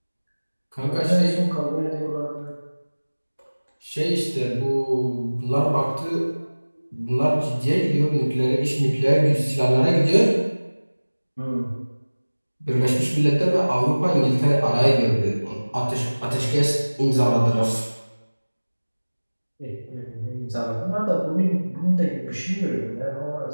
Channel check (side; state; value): both; inverted; correlation -1.00